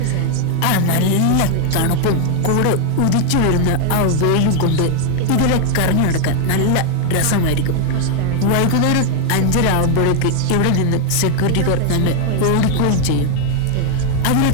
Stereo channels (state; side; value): different; both; correlation 0.00